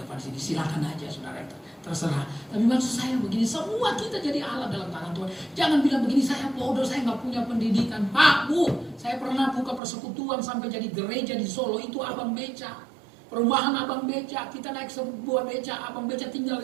sini. Silakan aja saudara, terserah. Tapi maksud saya begini, semua kita jadi alat dalam tangan Tuhan. Jangan bilang begini, saya bodoh, saya nggak punya pendidikan. Pak, Bu, saya pernah buka persekutuan sampai jadi gereja di Solo. Itu Abang Beca. Perumahan Abang Beca. Kita naik sebuah beca, Abang Beca tinggal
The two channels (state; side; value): drops out; left; at 9.8 s